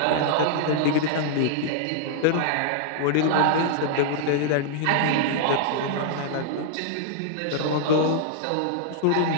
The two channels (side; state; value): both; different; correlation -0.01